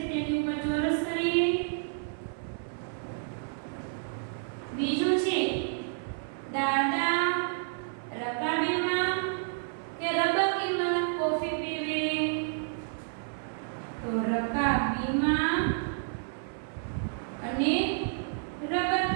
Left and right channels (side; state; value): left; silent; 58 dB below the other